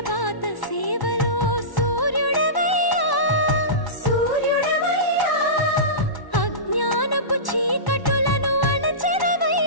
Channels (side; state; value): right; late; 1.1 ms